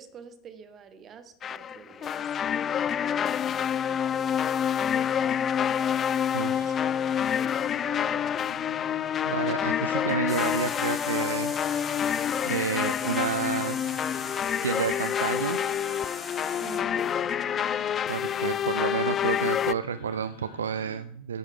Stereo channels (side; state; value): right; quieter; 4.4 dB